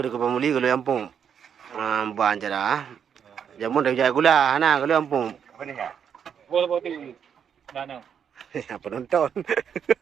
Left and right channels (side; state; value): left; quieter; 7.8 dB